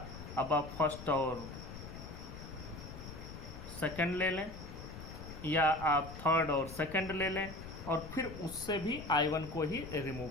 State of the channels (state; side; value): noise; left; rumble, 11 dB below the sound